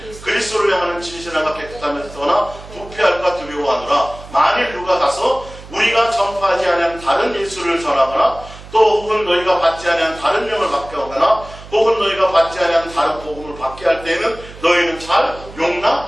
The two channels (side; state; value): right; noise; hum, 17 dB below the sound